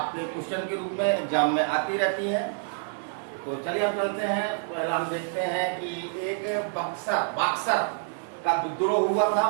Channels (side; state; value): left; silent; digital silence